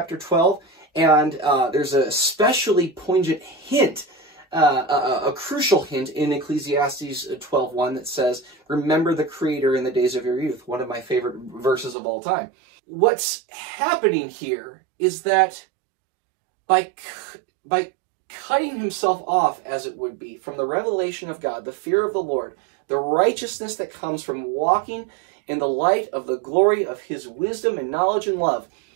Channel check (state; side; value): drops out; left; at 12.0 s